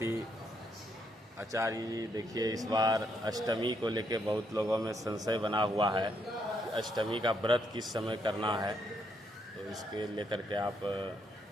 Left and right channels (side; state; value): both; normal; correlation 0.75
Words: आचार्य जी, देखिए इस बार अष्टमी को लेके बहुत लोगों में संशय बना हुआ है कि अष्टमी का व्रत किस समय करना है, तो इसके लेकर के आप